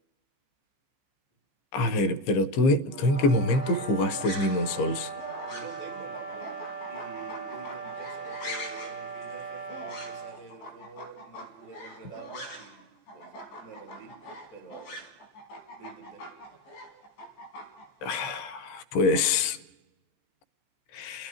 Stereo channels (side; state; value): right; late; 15 ms